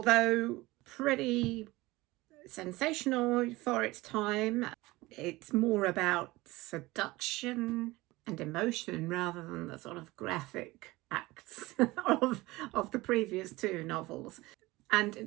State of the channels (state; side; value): quieter; left; 20.3 dB